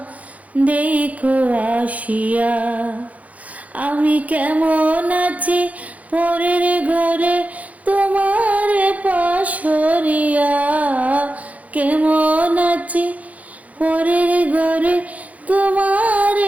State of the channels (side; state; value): left; late; 0.070 ms